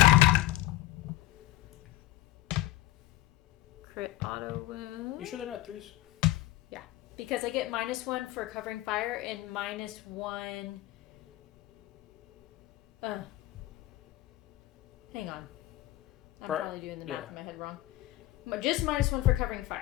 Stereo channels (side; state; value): right; quieter; 16.1 dB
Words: Crit auto wound. You sure they're not 3s? Because I get -1 for covering fire and -1. Hang on. I'm probably doing the math in my head wrong. But just -1 for covering